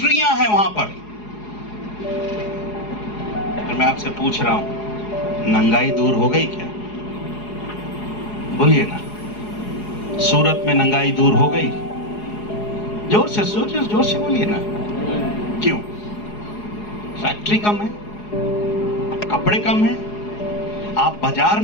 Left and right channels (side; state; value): right; late; 4.8 ms